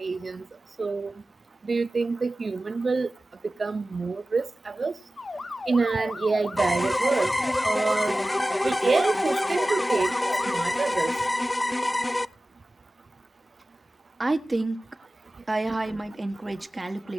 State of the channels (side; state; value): both; normal; correlation 0.96